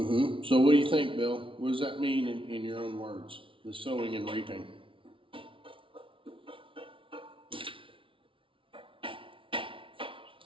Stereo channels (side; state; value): left; late; 0.25 ms